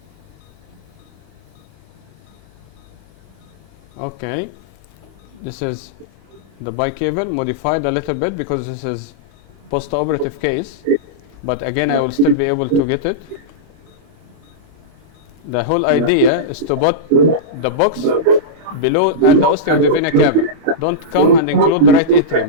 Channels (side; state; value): left; late; 25 ms